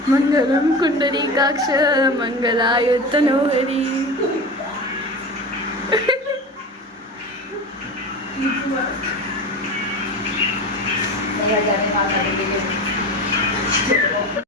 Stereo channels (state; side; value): normal; both; correlation 0.29